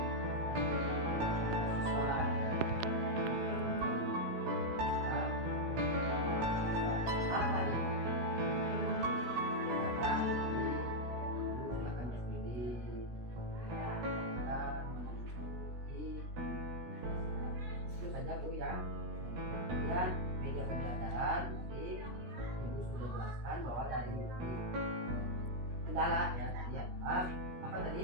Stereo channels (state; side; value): late; left; 17 ms